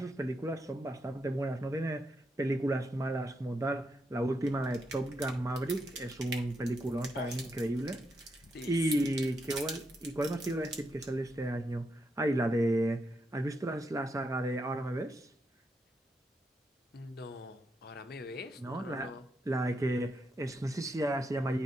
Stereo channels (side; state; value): both; normal; correlation 0.82